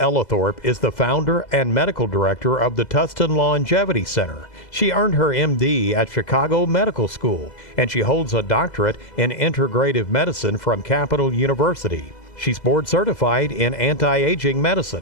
is the founder and medical director of the Tustin Longevity Center. She earned her MD at Chicago Medical School, and she holds a doctorate in integrative medicine from Capital University. She's board certified in anti-aging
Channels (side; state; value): right; late; 2.0 ms